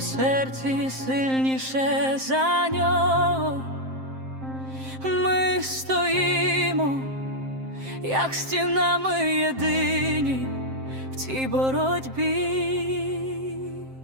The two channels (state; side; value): late; left; 7.6 ms